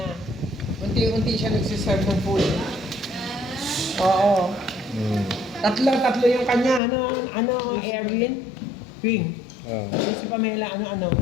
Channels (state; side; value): drops out; right; at 6.8 s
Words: Unti-unti siya nagsiserve ng food. Oo. Tatlo yung kanya. Ano, Erwin? Ping. Si Pamela, ano.